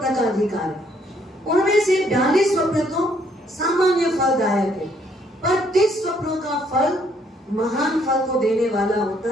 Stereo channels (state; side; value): normal; both; correlation 0.68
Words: का अधिकार है, उनमें से 42 स्वप्न तो सामान्य फलदायक है, पर 30 स्वप्नों का फल महान फल को देने वाला